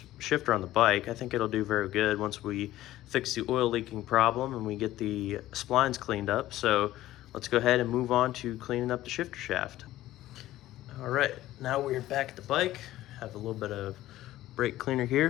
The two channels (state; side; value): quieter; right; 15.0 dB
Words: shifter on the bike. I think it'll do very good once we fix the oil leaking problem and we get the splines cleaned up. So let's go ahead and move on to cleaning up the shifter shaft. All right, now we're back at the bike. Have a little bit of brake cleaner